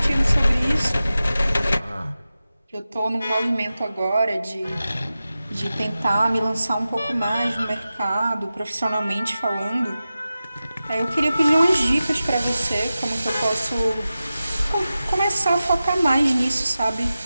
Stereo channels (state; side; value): inverted; both; correlation -0.94